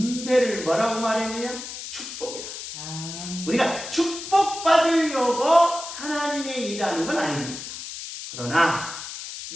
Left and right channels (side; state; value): left; noise; hiss, 9 dB below the sound